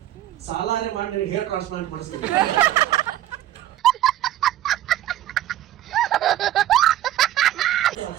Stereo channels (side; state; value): left; quieter; 13.2 dB